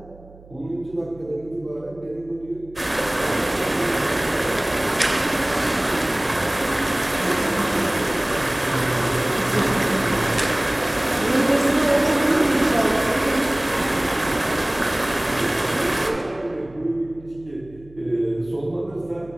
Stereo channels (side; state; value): right; noise; hum, 22 dB below the sound